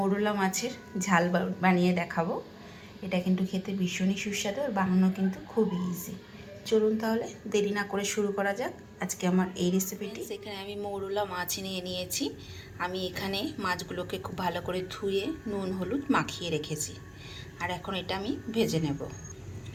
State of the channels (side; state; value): both; identical; correlation 1.00